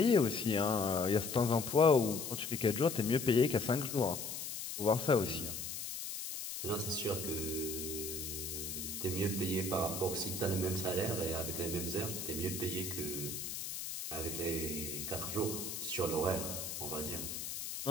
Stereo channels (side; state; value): left; noise; hiss, 6 dB below the sound